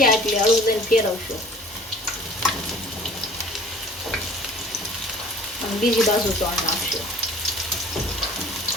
એટલે હળવું દઈને ફેરવશું અને બીજી બાજુ તળ નાખશું.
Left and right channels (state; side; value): normal; both; correlation 0.49